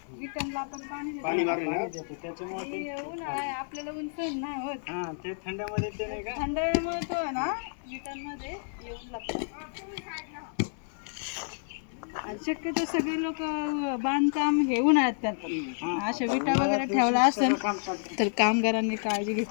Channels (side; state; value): right; silent; digital silence